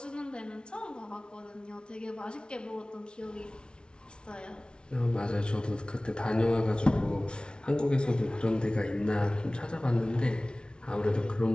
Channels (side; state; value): right; late; 0.056 ms